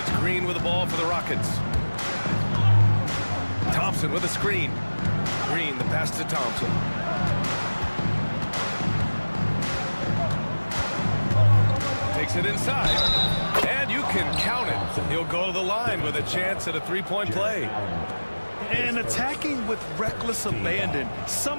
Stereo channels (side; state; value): both; inverted; correlation -1.00